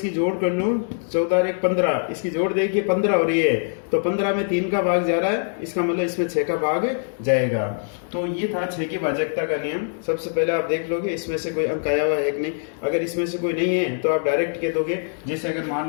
जोड़ कर लूं 14 और 1 15, इसकी जोड़ देखिए 15 हो रही है, तो 15 में 3 का भाग जा रहा है, इसका मतलब इसमें 6 का भाग जाएगा। तो ये था 6 की भाजकता का नियम। सबसे पहले आप देख लोगे इसमें से कोई अंक आया हुआ है कि नहीं। अगर इसमें से कोई नहीं है तो आप डायरेक्ट कह दोगे। जैसे अगर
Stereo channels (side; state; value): right; silent; 63 dB below the other